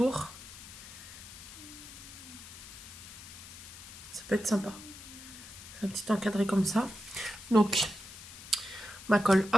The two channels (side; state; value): left; noise; hiss, 14 dB below the sound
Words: Ça peut être sympa. Un petit encadré comme ça. Donc, ma colle,